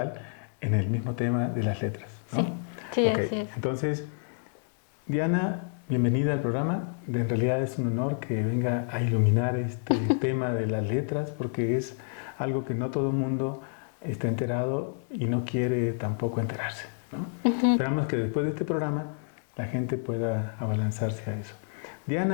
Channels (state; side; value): silent; right; 59 dB below the other